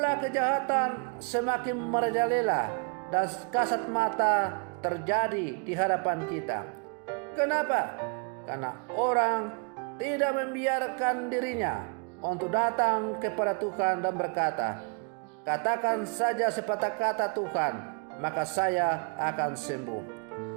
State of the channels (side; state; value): left; quieter; 36.7 dB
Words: kejahatan semakin merajalela dan kasat mata terjadi di hadapan kita. Kenapa? Karena orang tidak membiarkan dirinya untuk datang kepada Tuhan dan berkata, katakan saja sepatah kata Tuhan, maka saya akan sembuh.